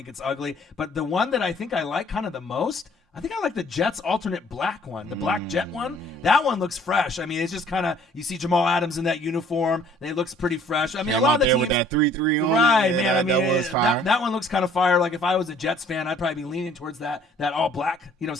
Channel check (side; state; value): both; normal; correlation 0.57